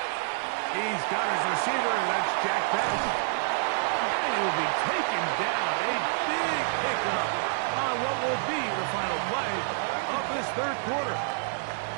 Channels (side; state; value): left; silent; digital silence